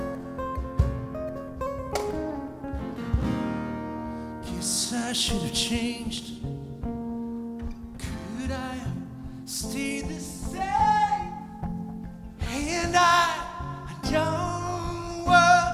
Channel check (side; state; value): both; identical; correlation 1.00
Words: Guess I should have changed. Could I have stayed the same? And I don't